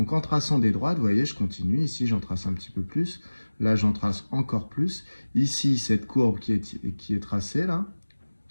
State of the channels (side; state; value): both; inverted; correlation -1.00